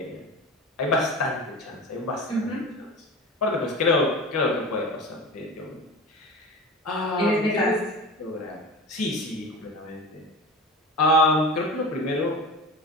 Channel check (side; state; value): both; normal; correlation 0.31